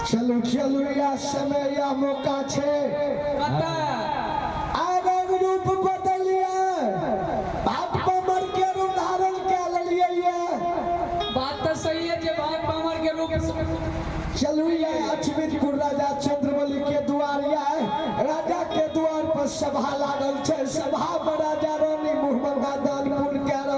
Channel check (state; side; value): identical; both; correlation 1.00